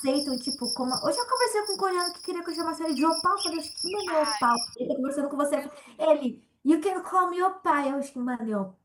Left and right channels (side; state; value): both; identical; correlation 1.00